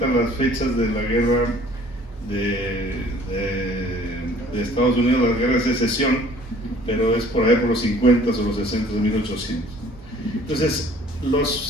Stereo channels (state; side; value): normal; both; correlation 0.53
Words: las fechas de la guerra de Estados Unidos, la guerra de secesión, pero es por ahí por los 50 o los 60 de 1800. Entonces,